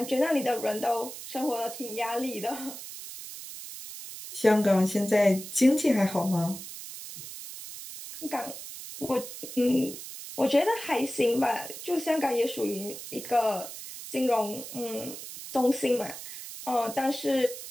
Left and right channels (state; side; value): noise; right; hiss, 11 dB below the sound